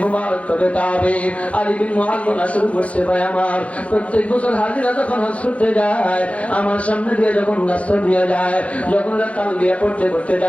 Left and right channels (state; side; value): late; right; 0.064 ms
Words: মুবারক তবে তাবে আলী বিন মুআয বলা শুরু করছে, ভাই আমার প্রত্যেক বছর হাজিরা যখন হজ করতে যায় আমার সামনে দিয়ে যখন রাস্তা দিয়ে যায়, যখন তালবিয়া পড়তে পড়তে